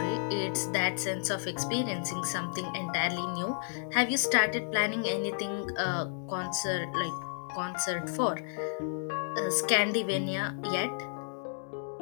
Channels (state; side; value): silent; right; digital silence